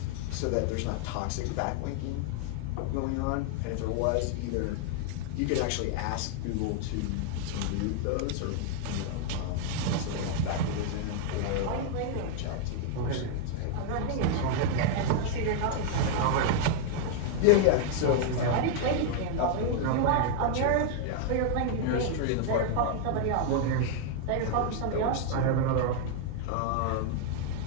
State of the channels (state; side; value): different; both; correlation 0.00